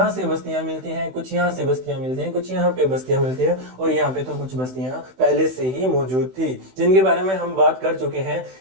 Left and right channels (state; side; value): late; left; 16 ms